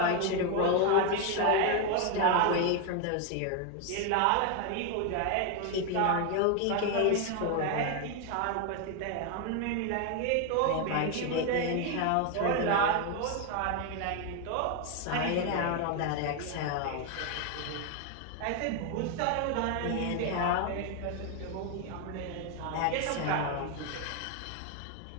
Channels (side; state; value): both; different; correlation 0.01